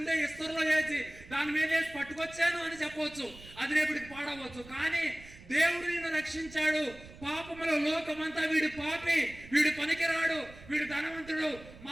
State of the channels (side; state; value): right; noise; rumble, 19 dB below the sound